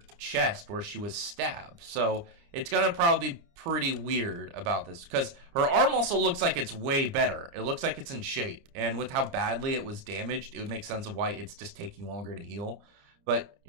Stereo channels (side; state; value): left; late; 29 ms